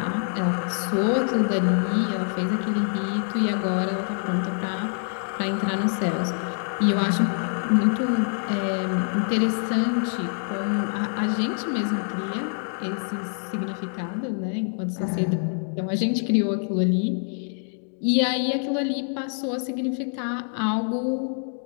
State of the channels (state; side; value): silent; right; 61 dB below the other